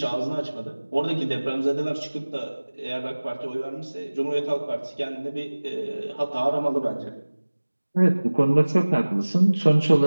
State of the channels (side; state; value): both; inverted; correlation -1.00